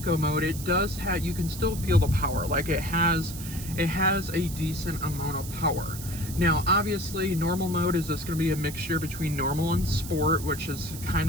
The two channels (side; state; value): right; noise; hiss, 12 dB below the sound